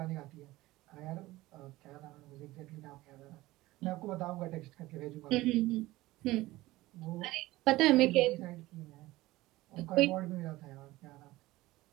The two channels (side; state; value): left; quieter; 18.3 dB